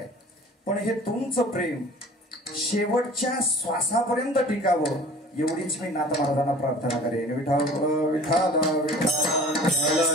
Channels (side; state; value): both; normal; correlation 0.45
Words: पण हे तुमचं प्रेम शेवटच्या श्वासापर्यंत टिकावं एवढीच मी नाथ महाराजांना प्रार्थना करेन. विठाल विठाल